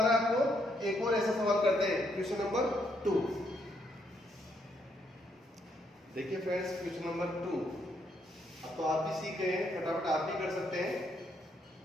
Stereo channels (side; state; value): both; normal; correlation 0.74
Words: है आपको। एक और ऐसा सवाल करते हैं, क्वेश्चन नंबर 2। देखिए फ्रेंड्स, क्वेश्चन नंबर 2। अब तो आप भी सीख गए हैं, फटाफट आप भी कर सकते हैं।